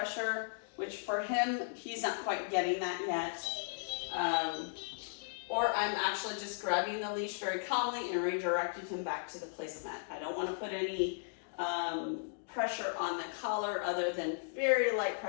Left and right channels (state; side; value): silent; right; digital silence